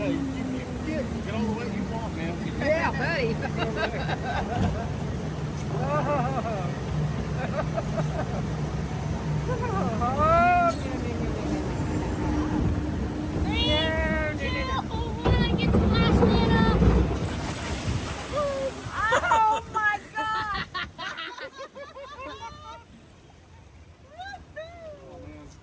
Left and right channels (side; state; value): both; identical; correlation 1.00